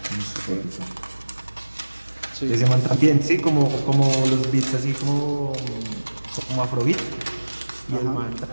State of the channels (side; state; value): both; inverted; correlation -1.00